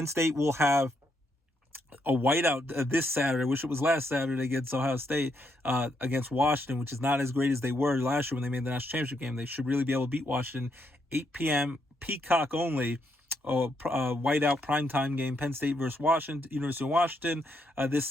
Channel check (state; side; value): normal; both; correlation 0.77